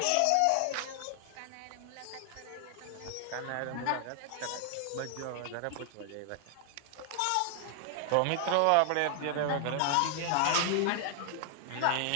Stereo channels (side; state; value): both; different; correlation 0.00